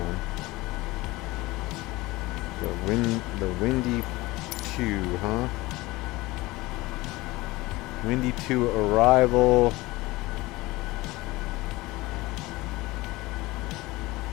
The Windy 2, huh? Windy 2 arrival.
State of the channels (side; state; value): right; quieter; 20.6 dB